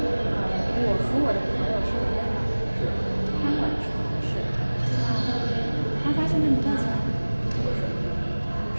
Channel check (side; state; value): both; inverted; correlation -1.00